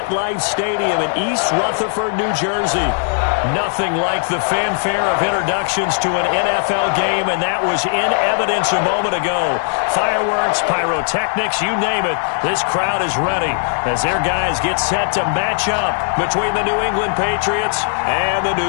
Stadium in East Rutherford, New Jersey. Nothing like the fanfare of introductions to an NFL game, and that was in evidence a moment ago. Fireworks, pyrotechnics, you name it. This crowd is ready as their guys get set to match up between the New England Patriots and the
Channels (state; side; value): silent; right; digital silence